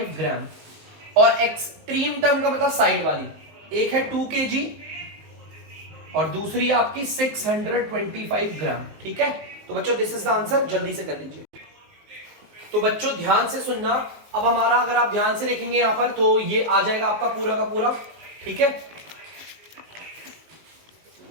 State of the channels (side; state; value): left; late; 19 ms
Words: ग्राम। और एक्सट्रीम टर्म का मतलब साइड वाली, एक है 2 kg और दूसरी है आपकी 625 ग्राम, ठीक है। तो बच्चों दिस इज द आंसर, जल्दी से कर लीजिए। तो बच्चों ध्यान से सुनना। अब हमारा अगर आप ध्यान से देखेंगे यहां पर तो ये आ जाएगा आपका पूरा का पूरा, ठीक है।